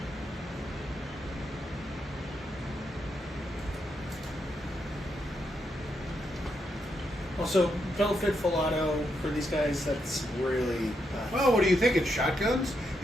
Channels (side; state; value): both; normal; correlation 0.81